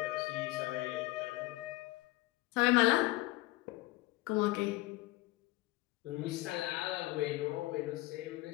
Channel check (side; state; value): right; quieter; 20.1 dB